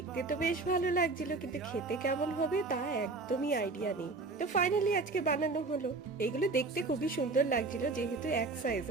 তো বেশ ভালো লাগছিল, কিন্তু খেতে কেমন হবে তা একদমই আইডিয়া নেই। তো ফাইনালি আজকে বানানো হলো। এগুলো দেখতে খুবই সুন্দর লাগছিল, যেহেতু এক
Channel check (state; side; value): quieter; left; 3.7 dB